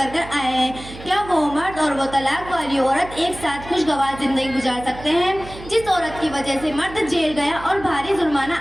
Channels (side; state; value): right; noise; hum, 15 dB below the sound